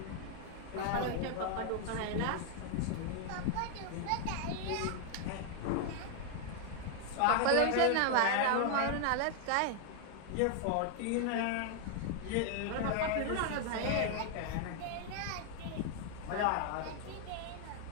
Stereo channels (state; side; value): different; both; correlation 0.00